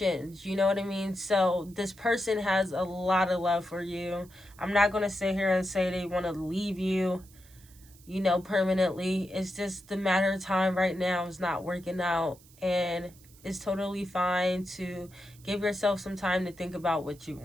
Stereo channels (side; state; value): right; noise; hiss, 25 dB below the sound